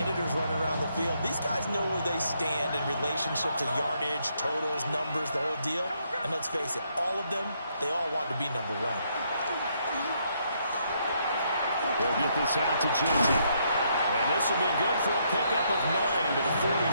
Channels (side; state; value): both; inverted; correlation -0.74